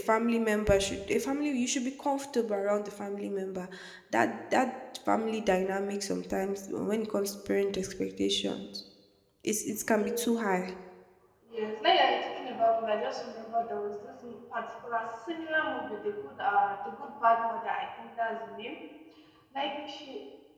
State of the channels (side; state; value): both; identical; correlation 1.00